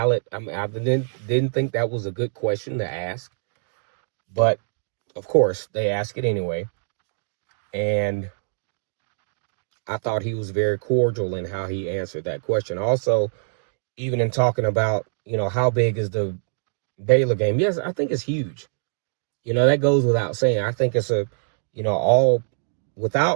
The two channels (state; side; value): silent; left; digital silence